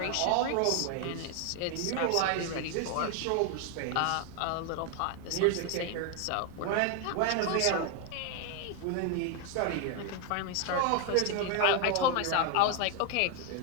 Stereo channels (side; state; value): both; different; correlation 0.01